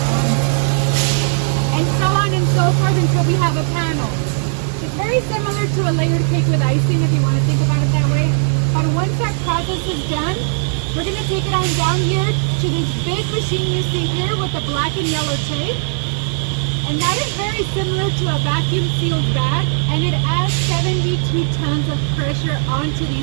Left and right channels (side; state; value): left; silent; 64 dB below the other